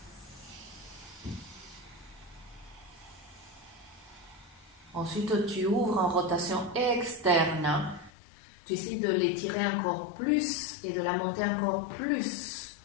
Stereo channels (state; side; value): drops out; right; at 8.1 s